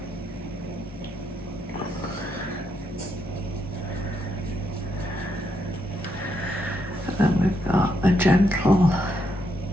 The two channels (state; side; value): normal; both; correlation 0.78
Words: And then we've got a gentle